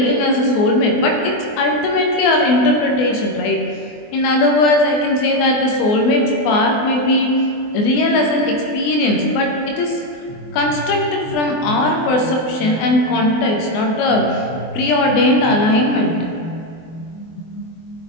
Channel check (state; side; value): late; right; 24 ms